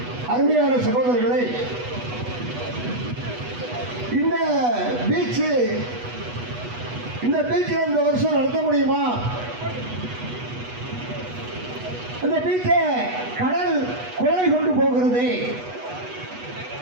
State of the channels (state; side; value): late; left; 8.2 ms